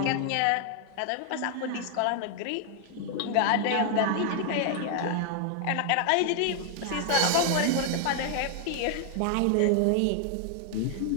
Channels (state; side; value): different; both; correlation 0.00